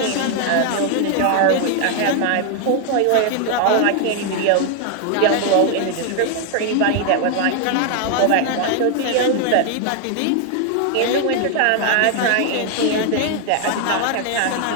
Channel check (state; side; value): different; both; correlation 0.00